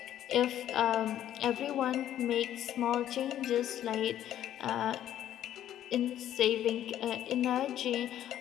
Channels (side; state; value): right; quieter; 11.5 dB